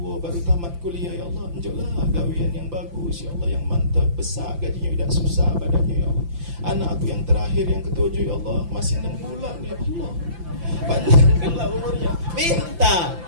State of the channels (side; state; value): left; late; 5.9 ms